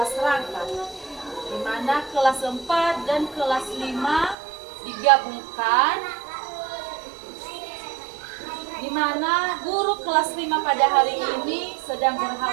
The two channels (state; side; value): drops out; left; at 4.4 s